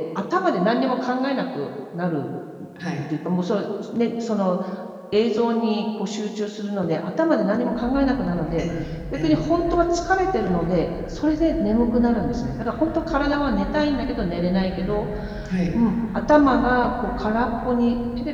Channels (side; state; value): both; identical; correlation 1.00